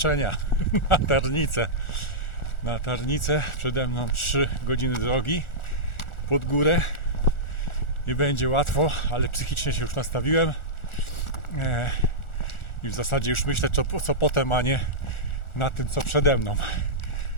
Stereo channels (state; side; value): late; right; 1.4 ms